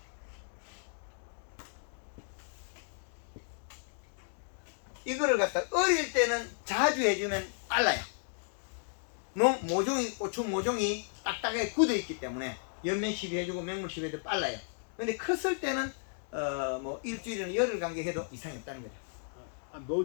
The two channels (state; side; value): silent; right; digital silence